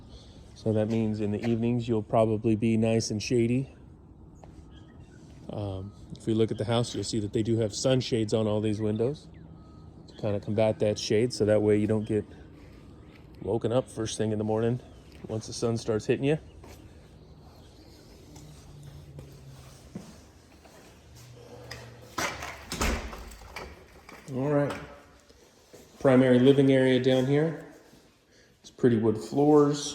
So that means in the evenings you'll probably be nice and shady. If we look at the house, you'll see that they do have sunshades on all these windows to kind of combat that shade, so that way you don't get woken up first thing in the morning once the sun starts hitting you. All right, primary living area down here. It's pretty wood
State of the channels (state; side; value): identical; both; correlation 1.00